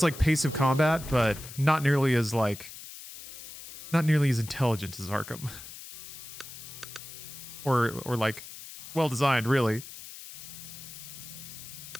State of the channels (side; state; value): left; noise; hiss, 13 dB below the sound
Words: like pace of combat, but not nearly as like... Not nearly as intelligent as Arkham. or like well designed, really.